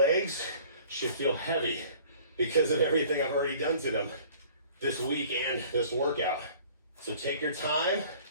should feel heavy because of everything I've already done to them this week and this workout. So take your time,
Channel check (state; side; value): inverted; both; correlation -0.50